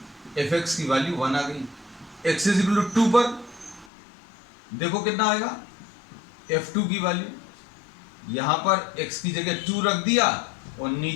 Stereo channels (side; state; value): right; drops out; at 3.9 s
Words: fx की वैल्यू 1 आ गई. x इज इक्वल टू 2 पर देखो कितना आएगा, f2 की वैल्यू, यहां पर x की जगह 2 रख दिया और